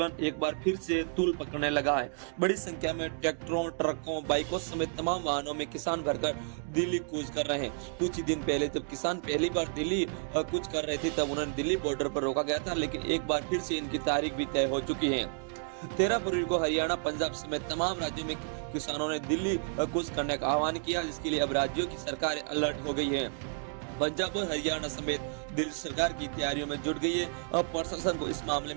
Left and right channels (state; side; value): silent; left; 57 dB below the other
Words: एक बार फिर से तूल पकड़ने लगा है। बड़ी संख्या में ट्रैक्टरों, ट्रकों, बाइकों समेत तमाम वाहनों में किसान भरकर दिल्ली कूच कर रहे हैं। कुछ ही दिन पहले जब किसान पहली बार दिल्ली कूच कर रहे थे तब उन्हें दिल्ली बॉर्डर पर रोका गया था, लेकिन एक बार फिर से इनकी तारीख भी तय हो चुकी है। 13 फरवरी को हरियाणा, पंजाब समेत तमाम राज्यों में किसानों ने दिल्ली कूच करने का आह्वान किया, जिसके लिए अब राज्यों की सरकार अलर्ट हो गई है। पंजाब और हरियाणा समेत दिल्ली सरकार की तैयारियों में जुट गई है। अब प्रशासन को इस मामले